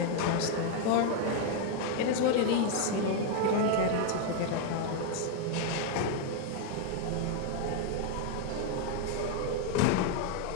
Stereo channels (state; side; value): different; both; correlation 0.00